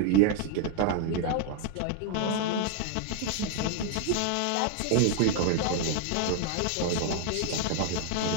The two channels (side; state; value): both; different; correlation 0.00